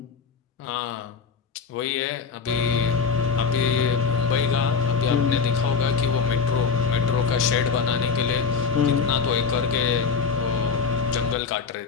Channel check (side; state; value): right; quieter; 5.7 dB